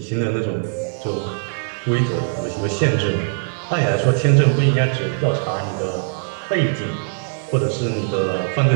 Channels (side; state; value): left; silent; digital silence